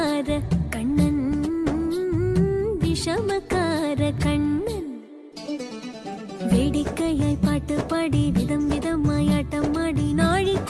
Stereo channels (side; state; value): both; identical; correlation 1.00